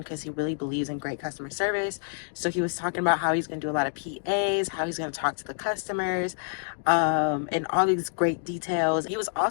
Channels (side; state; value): right; silent; digital silence